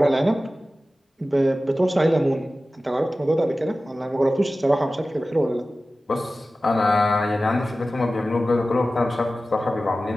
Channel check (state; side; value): normal; both; correlation 0.95